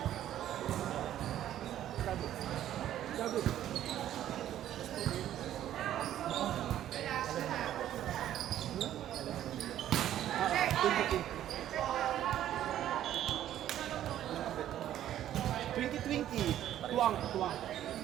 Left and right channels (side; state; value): left; quieter; 11.9 dB